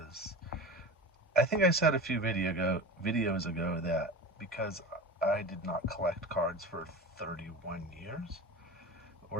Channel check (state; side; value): normal; both; correlation 0.31